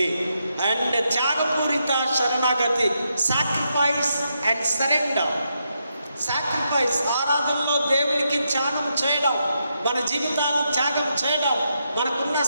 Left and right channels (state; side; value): inverted; both; correlation -0.82